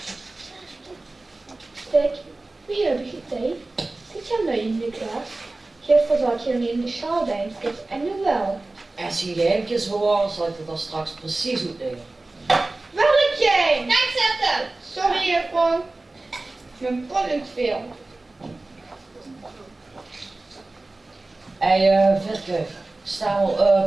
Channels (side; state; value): left; quieter; 3.1 dB